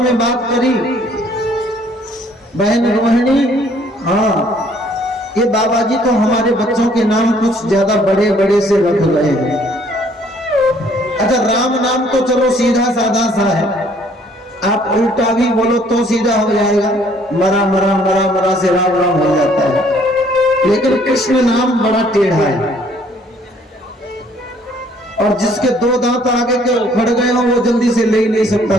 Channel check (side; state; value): both; normal; correlation 0.61